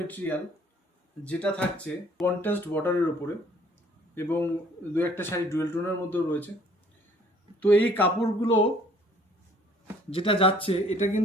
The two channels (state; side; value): normal; both; correlation 0.58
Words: যেটা থাকছে কন্ট্রাস্ট বর্ডারের ওপরে এবং দু একটা শাড়ি ডুয়েল টোনের মধ্যেও রয়েছে। তো এই কাপড়গুলো যেটা যাচ্ছে, এটা